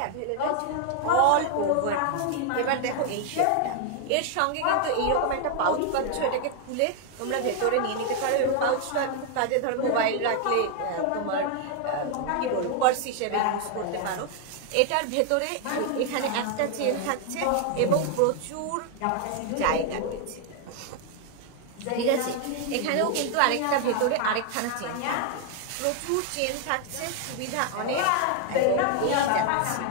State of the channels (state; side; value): different; both; correlation 0.00